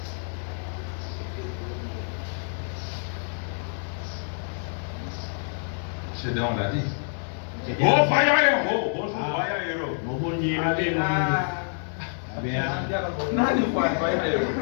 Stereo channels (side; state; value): right; silent; digital silence